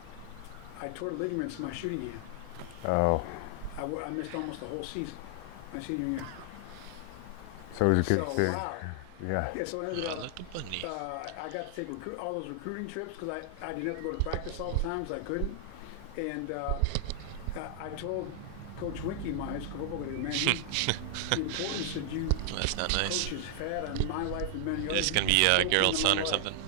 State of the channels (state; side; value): different; both; correlation 0.00